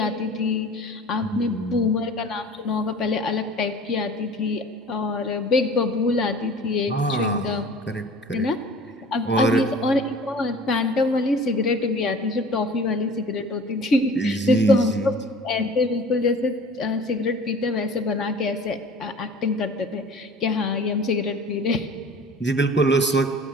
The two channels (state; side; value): normal; both; correlation 0.44